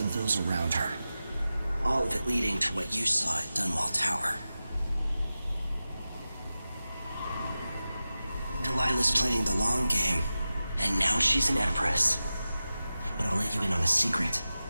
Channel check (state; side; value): inverted; both; correlation -0.94